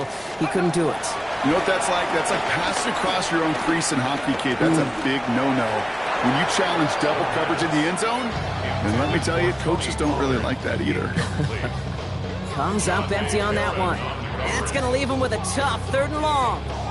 He couldn't do it. You know what that's like? That's like passing across your own crease in hockey, kid. That's a big no-no. When you challenge double coverage in the end zone, and let me tell you, coaches don't really like that either. Comes up empty on that one. That's going to leave him with a tough 3rd and long.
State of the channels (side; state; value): both; identical; correlation 1.00